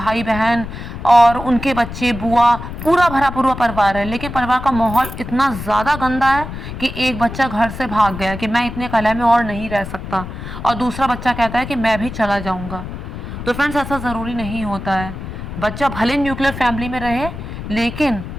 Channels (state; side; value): noise; left; rumble, 9 dB below the sound